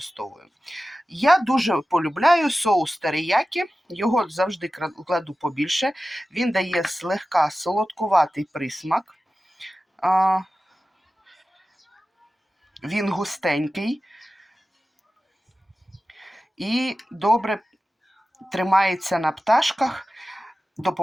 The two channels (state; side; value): normal; both; correlation 0.95